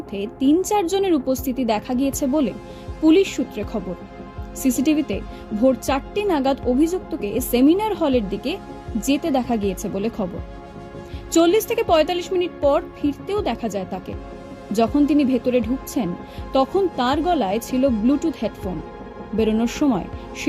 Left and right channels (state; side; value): identical; both; correlation 1.00